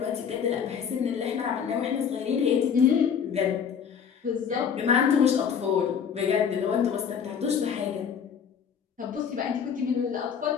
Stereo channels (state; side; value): quieter; right; 7.3 dB